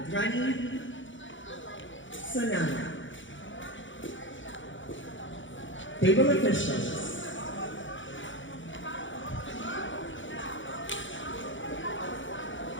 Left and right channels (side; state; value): right; late; 0.56 ms